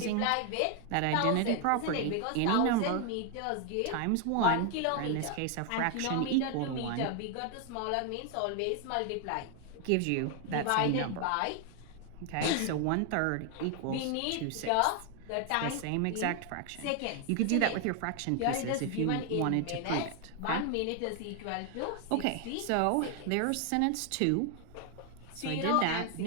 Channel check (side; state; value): both; different; correlation 0.00